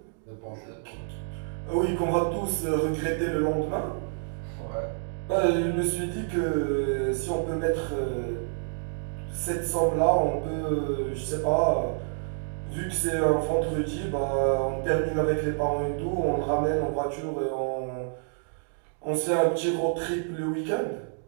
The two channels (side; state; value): left; silent; digital silence